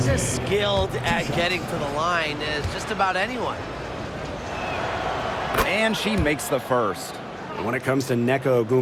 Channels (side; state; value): both; identical; correlation 1.00